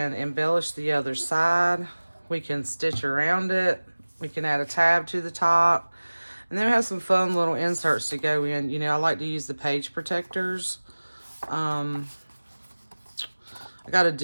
embellish the other side. We can stitch around it. We can add a tab to the top. And then we have some fun little inserts to go in. You know, I like to use the page protectors. I got a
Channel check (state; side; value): inverted; both; correlation -1.00